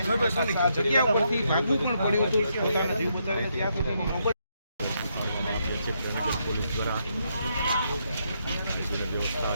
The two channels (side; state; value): both; inverted; correlation -0.78